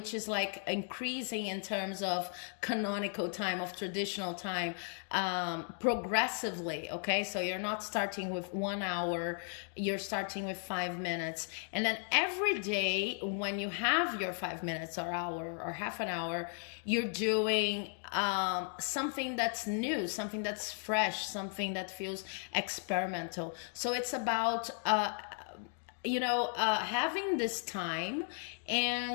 is like increasing in terms of canonical time, of traditional time, progressively, okay? So you're not starting with 1 hour, you're starting with 5 minutes. And then every day when you have your 5 minutes or hour or half an hour, you're doing something that's new, something that's fresh, something that feels experimental. So it's about having this time,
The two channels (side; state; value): right; silent; 54 dB below the other